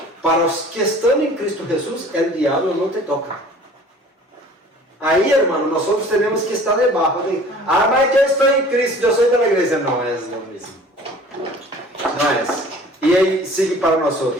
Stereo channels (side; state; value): both; normal; correlation 0.48